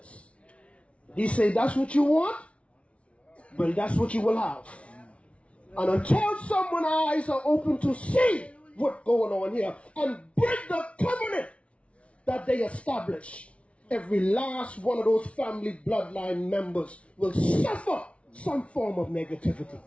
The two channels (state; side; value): late; right; 0.062 ms